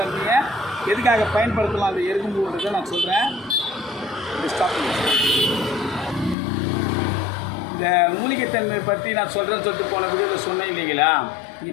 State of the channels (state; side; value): drops out; right; at 6.4 s